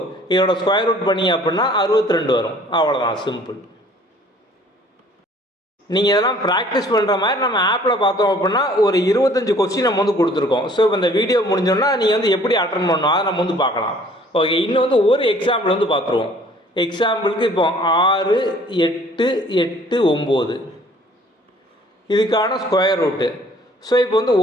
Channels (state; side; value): normal; both; correlation 0.55